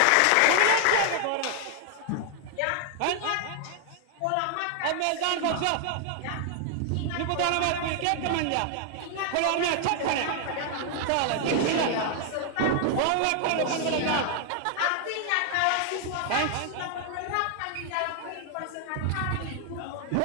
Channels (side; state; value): both; different; correlation 0.00